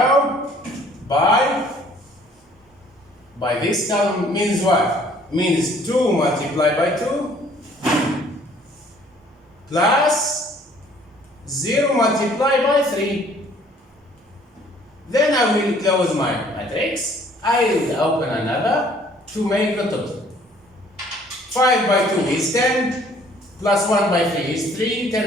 by this column. Means what? Means 2 multiplied by 2 plus 0 multiplied by 3. Then I will close my matrix. I will open another to make the total. 5 by 2 is 10, plus 1 by 3 is 3,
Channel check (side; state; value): both; normal; correlation 0.58